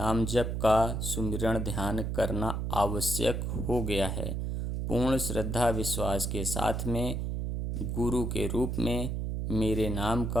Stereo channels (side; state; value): right; noise; hum, 2 dB below the sound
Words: जप का सुमिरन ध्यान करना आवश्यक हो गया है। पूर्ण श्रद्धा विश्वास के साथ में गुरु के रूप में मेरे नाम